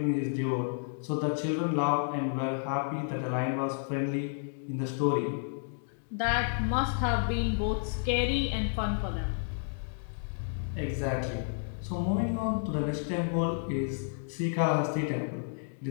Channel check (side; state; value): right; silent; digital silence